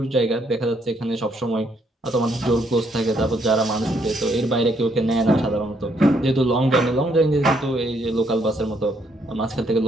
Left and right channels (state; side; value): normal; both; correlation 0.71